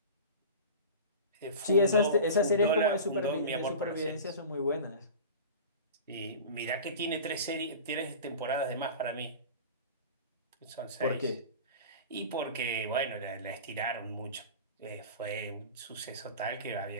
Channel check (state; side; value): inverted; both; correlation -0.35